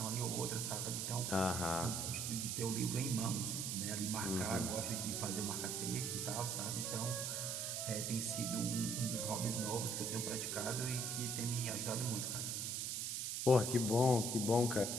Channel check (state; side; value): noise; right; hiss, 1 dB below the sound